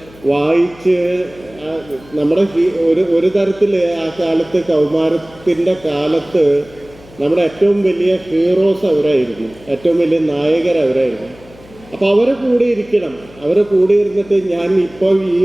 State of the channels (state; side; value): noise; left; hum, 23 dB below the sound